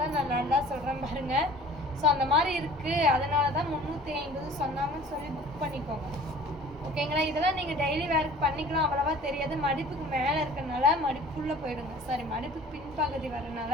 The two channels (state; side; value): normal; both; correlation 0.47